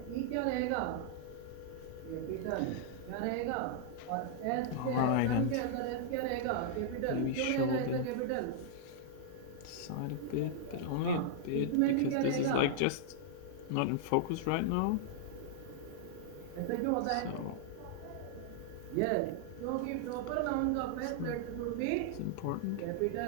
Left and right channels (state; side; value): different; both; correlation -0.01